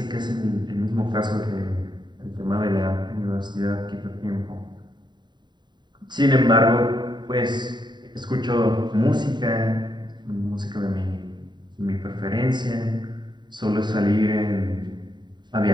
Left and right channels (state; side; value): late; left; 0.21 ms